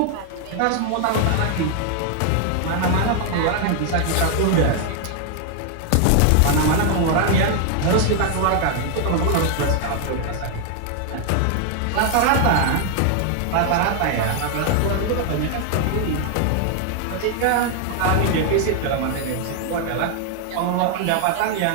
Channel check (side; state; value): both; different; correlation 0.00